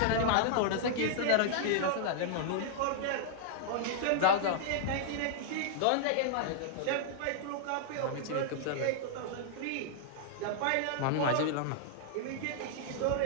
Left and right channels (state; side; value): different; both; correlation -0.01